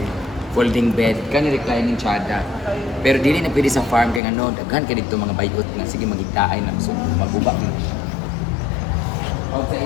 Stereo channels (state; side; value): drops out; right; at 4.2 s